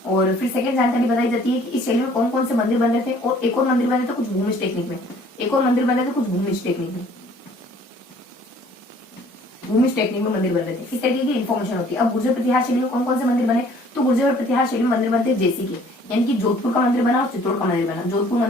और फिर सेकंड जानकारी बताई जाती है कि इस शैली में कौन कौन से मंदिर बन रहे थे, और एक और मंदिर बन रहे थे कुछ भूमिज टेक्निक में, एक और मंदिर बन रहे थे कुछ भूमिज टेक्निक में, भूमिज टेक्निक में मंदिर बन रहे थे। इस तरीके की इन्फॉर्मेशन होती है। अब गुर्जर प्रतिहार शैली में कौन कौन से मंदिर बने, तो गुर्जर प्रतिहार शैली में मंदिर बनते हैं जैसे कि, यानी कि जोधपुर का मंदिर बना और चित्तौड़ का मंदिर बना। जोधपुर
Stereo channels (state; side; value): normal; both; correlation 0.56